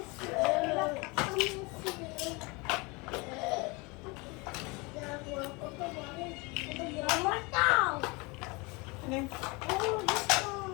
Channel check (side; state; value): right; quieter; 27.0 dB